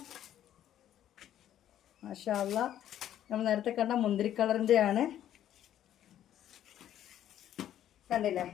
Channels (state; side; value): quieter; right; 11.3 dB